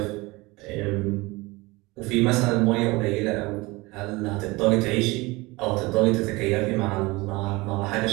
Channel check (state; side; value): quieter; left; 22.8 dB